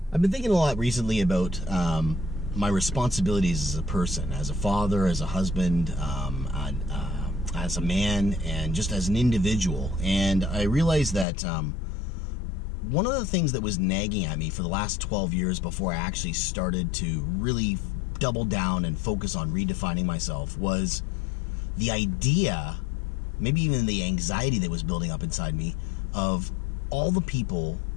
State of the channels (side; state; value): right; drops out; at 11.2 s